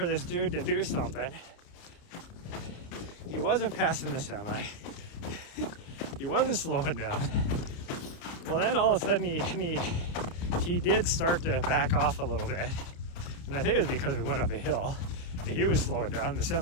this dude to do something. He wasn't passing the semi. He wasn't slowing down. Well, then all of a sudden he did start to back off a little bit. And I think it was because we went up a hill. He was slowing down, the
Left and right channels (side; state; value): right; late; 30 ms